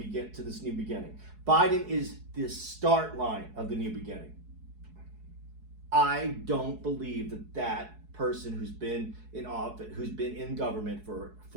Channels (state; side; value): late; left; 4.7 ms